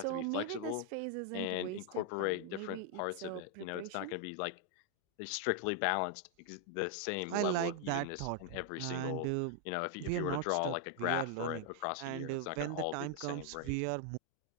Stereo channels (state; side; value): different; both; correlation 0.00